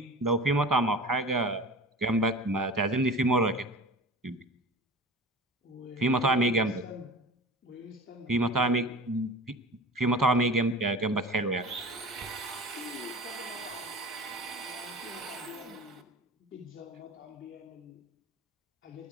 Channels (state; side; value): normal; both; correlation 0.37